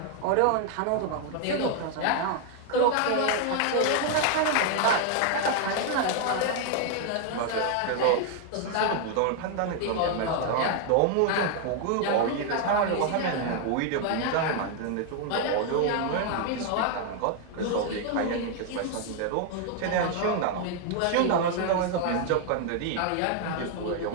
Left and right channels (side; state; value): both; different; correlation 0.00